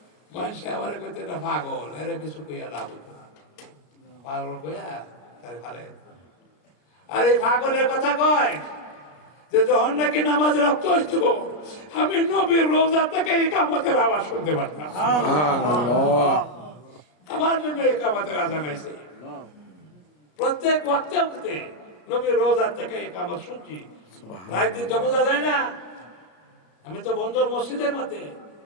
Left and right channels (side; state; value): right; late; 34 ms